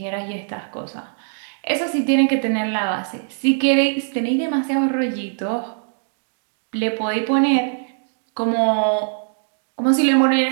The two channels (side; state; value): left; silent; digital silence